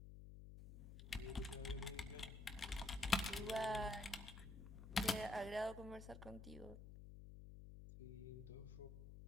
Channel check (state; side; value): noise; left; hum, 11 dB below the sound